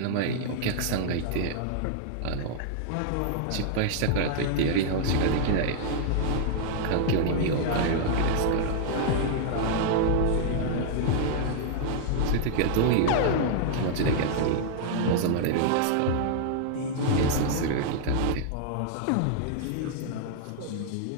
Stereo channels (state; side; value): different; both; correlation -0.01